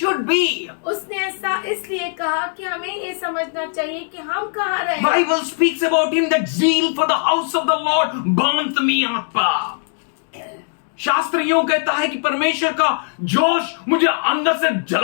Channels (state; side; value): silent; right; digital silence